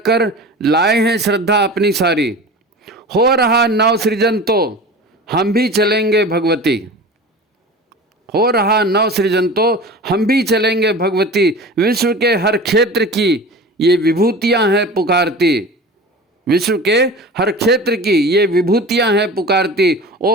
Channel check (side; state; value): both; normal; correlation 0.35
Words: लाए हैं श्रद्धा अपनी सारी। हो रहा नव सृजन तो हम भी चलेंगे भगवती। हो रहा नव सृजन तो हम भी चलेंगे भगवती। विश्व के हर क्षेत्र की ये विभूतियां हैं पुकारती। विश्व के हर क्षेत्र की ये विभूतियां हैं पुकारती।